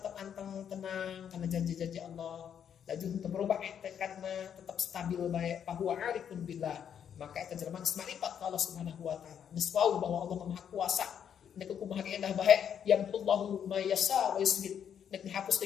anteng tenang kana janji-janji Allah. Laju untuk berubah tekadna tetap stabil bae bahwa arifun billah. Maka eta jelema geus marifat ka Allah Subhanahu wa taala. Geus wau bahwa Allah Maha Kuasa. Nek kumaha ge endah bae yamullahu ma yasha wa yusbit. Nek dihapus ti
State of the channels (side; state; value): right; quieter; 8.5 dB